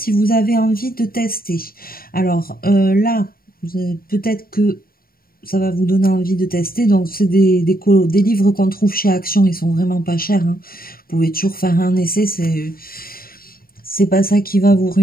vous avez envie de tester. Alors là, Peut-être que ça va vous donner envie de tester. Donc, c'est des livres qu'on trouve chez Action. Ils sont vraiment pas chers, hein. Vous pouvez toujours faire un essai. C'est pas ça qui va vous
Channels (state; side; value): late; right; 0.43 ms